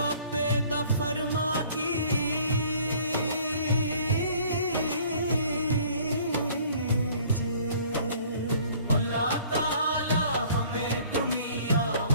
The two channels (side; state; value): both; inverted; correlation -0.54